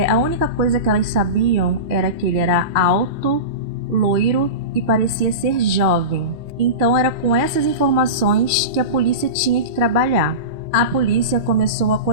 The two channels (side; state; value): left; late; 2.4 ms